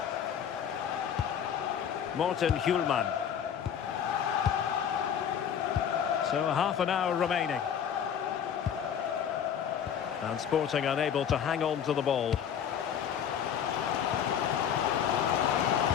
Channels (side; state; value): right; quieter; 8.5 dB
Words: Morten Hjulman. So half an hour remaining. And Sporting unable to hang on to the ball.